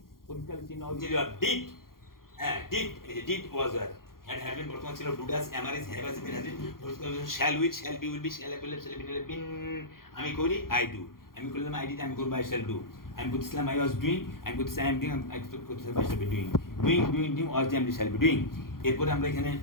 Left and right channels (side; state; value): right; late; 0.92 ms